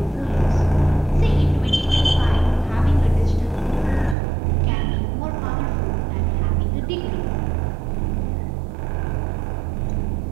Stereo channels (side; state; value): left; drops out; at 4.2 s